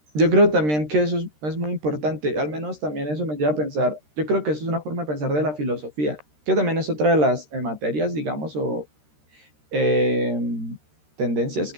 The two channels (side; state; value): left; late; 13 ms